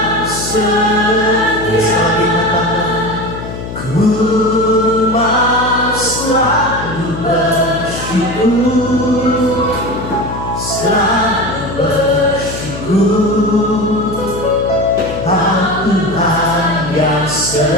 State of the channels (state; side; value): noise; left; hum, 9 dB below the sound